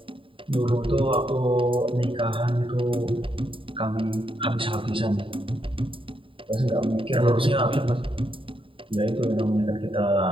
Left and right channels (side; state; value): left; late; 0.25 ms